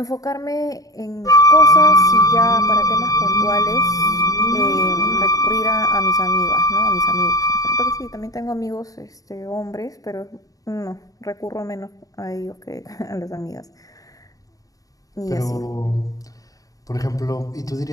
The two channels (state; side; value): late; right; 0.17 ms